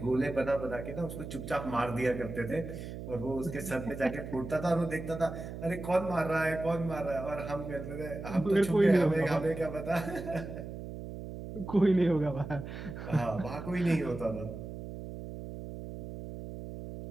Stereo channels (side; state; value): right; noise; hum, 9 dB below the sound